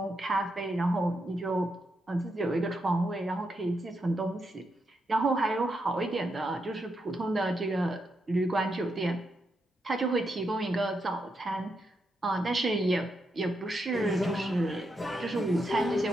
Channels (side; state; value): both; normal; correlation 0.83